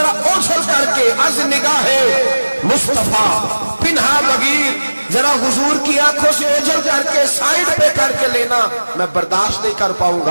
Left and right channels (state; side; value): inverted; both; correlation -1.00